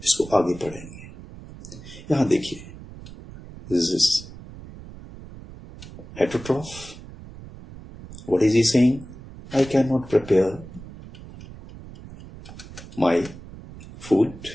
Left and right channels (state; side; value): noise; right; rumble, 16 dB below the sound